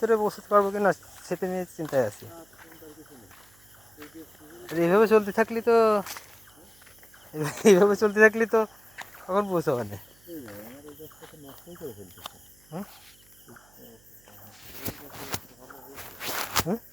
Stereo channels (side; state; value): right; noise; hum, 30 dB below the sound